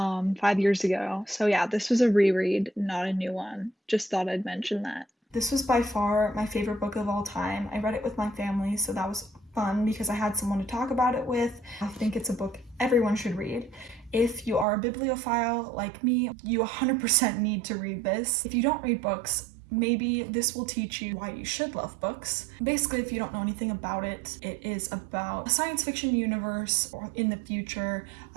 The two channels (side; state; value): left; drops out; at 14.7 s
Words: years ago. So yeah, this was a reread, not a new one. Just thought I'd mention that. This was by far my favorite book of all time. I read it with my family, so that was fun because I had someone to talk about it with. I think it's a book everyone should read. If you are a bibliophile like me, you 100% need to read this. If you don't read books, maybe this will teach you why you should love books. Basically, if you don't know anything about it, it is about a science fiction universe or in the future